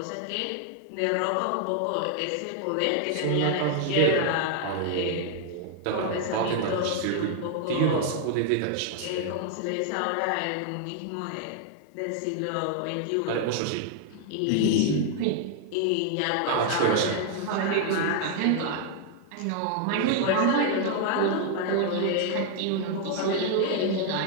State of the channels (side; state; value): both; different; correlation 0.00